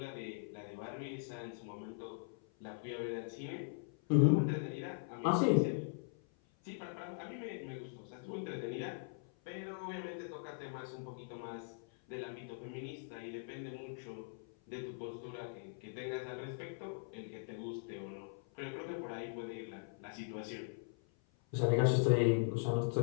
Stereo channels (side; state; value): right; silent; 51 dB below the other